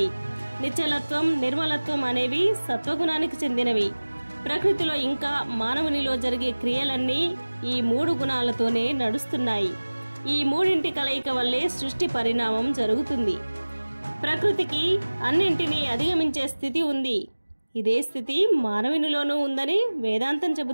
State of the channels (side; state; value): both; inverted; correlation -1.00